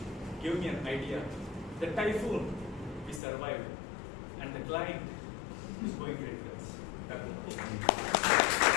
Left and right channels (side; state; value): right; drops out; at 3.2 s